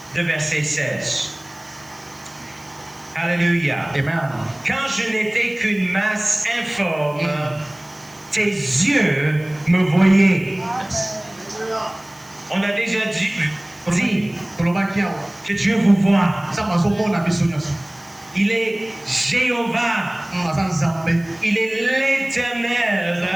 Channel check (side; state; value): right; noise; hiss, 26 dB below the sound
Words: de verset 16. Alléluia. Amen. Quand je n'étais qu'une masse informe, tes yeux me voyaient. On a déjà dit que Dieu vous voit. Il est Jéhovah. Il est l'Éternel.